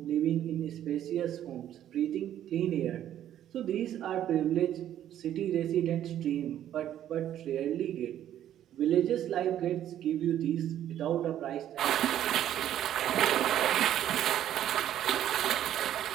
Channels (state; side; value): quieter; left; 11.3 dB